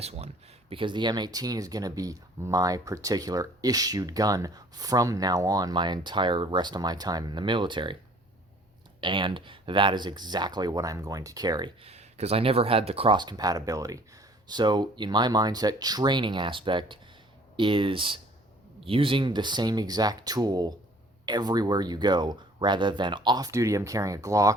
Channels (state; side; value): normal; both; correlation 0.54